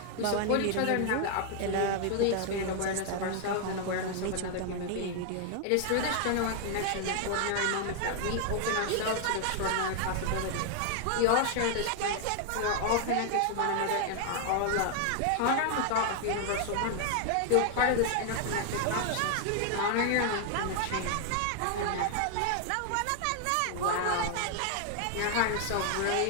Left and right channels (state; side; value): different; both; correlation 0.00